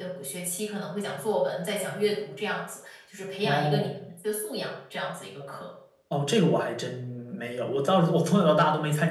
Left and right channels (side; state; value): both; identical; correlation 1.00